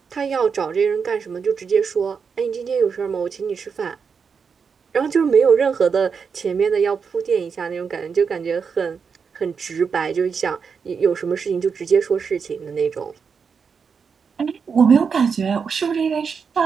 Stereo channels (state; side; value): quieter; left; 6.0 dB